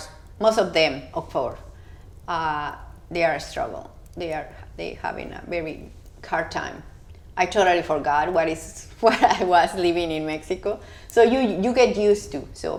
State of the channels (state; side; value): identical; both; correlation 1.00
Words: Most of them, of course, they are a struggle. They having a very hard time. I totally forgot what I was living in Mexico. So you get used to.